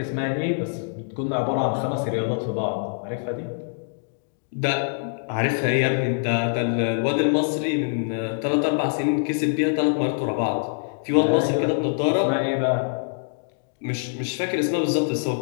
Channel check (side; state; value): right; silent; digital silence